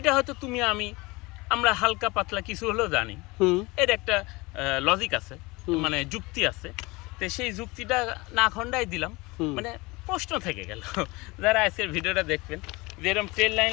হয়তো তুমি আমরা হালকা পাতলা কিছু হলেও জানি। এর একটা লজিক আছে, মানে যুক্তি আছে। তো সেই যুক্তিটা না খণ্ডাই দিলাম, মানে প্রশ্ন থেকে গেল যারা আজকের ভিডিওটা দেখবেন, যে এরকম ট্রেন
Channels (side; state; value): right; quieter; 23.7 dB